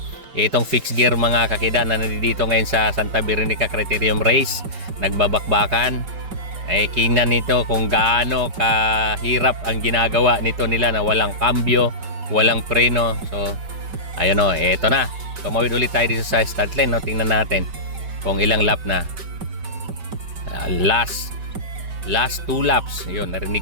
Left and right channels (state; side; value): late; left; 5.2 ms